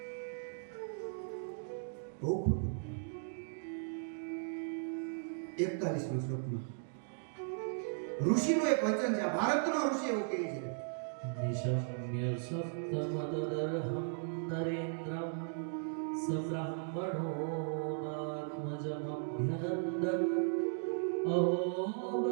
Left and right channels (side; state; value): left; silent; digital silence